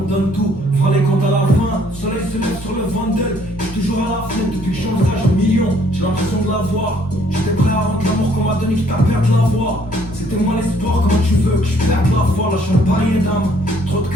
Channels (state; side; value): normal; both; correlation 0.63